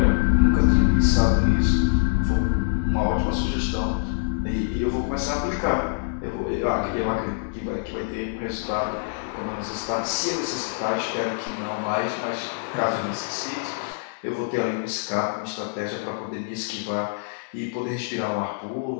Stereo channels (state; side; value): silent; right; digital silence